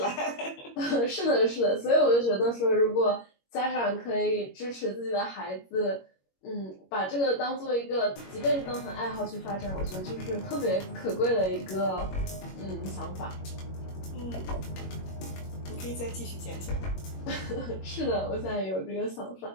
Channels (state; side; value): late; right; 21 ms